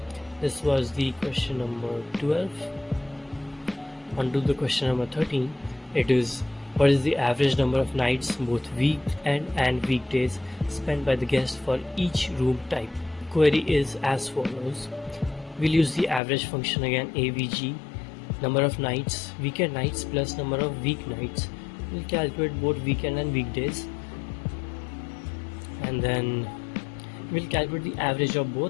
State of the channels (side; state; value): right; drops out; at 16.2 s